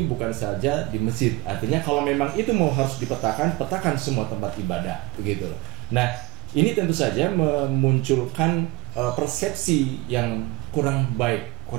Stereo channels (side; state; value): left; quieter; 23.2 dB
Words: bukan saja di masjid? Artinya kalau memang itu harus dipetakan, petakan semua tempat ibadah begitu loh. Nah, ini tentu saja memunculkan persepsi yang kurang baik,